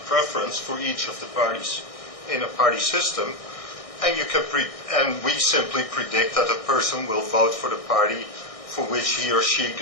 for each of the parties in a party system, and you can and we simply predict that a person will vote for the party for which he or she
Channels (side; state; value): right; late; 1.6 ms